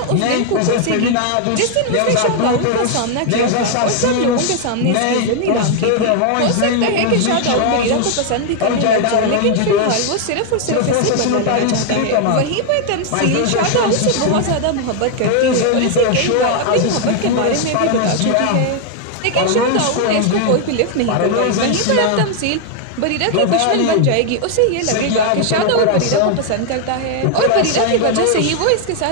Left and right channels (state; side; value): different; both; correlation 0.00